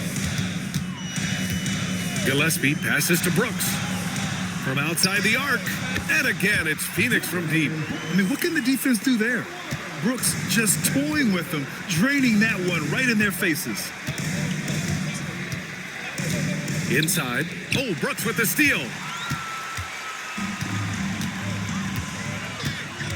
Gillespie passes to Brooks. From outside the arc. And again, it's Phoenix from deep. I mean, what can the defense do there? Brooks just toying with them, draining that one right in their faces. Inside. Oh, Brooks with the steal.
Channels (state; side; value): identical; both; correlation 1.00